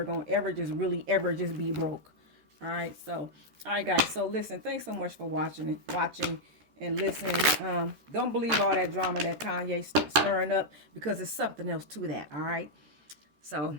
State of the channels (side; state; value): left; late; 14 ms